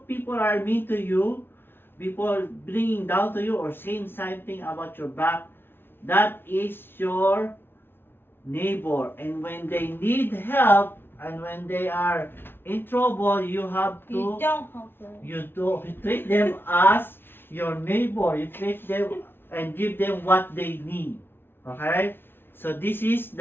people are mean to you, people bringing down to you or saying something about your back, that is your neighbor. And when they need help and when they are in trouble, you have to, You don't help them. you treat them as your neighbor. You treat them and give them what they need. Okay? So this is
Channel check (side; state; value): right; late; 0.11 ms